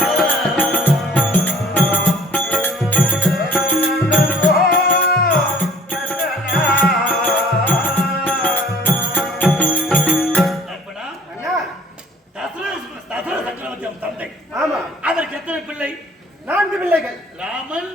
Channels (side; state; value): both; normal; correlation 0.53